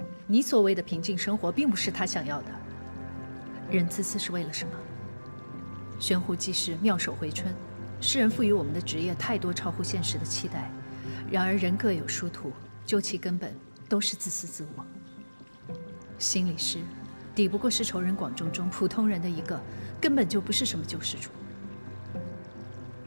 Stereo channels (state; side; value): inverted; both; correlation -1.00